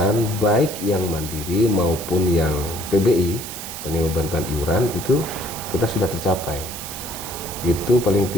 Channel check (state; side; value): noise; right; hiss, 9 dB below the sound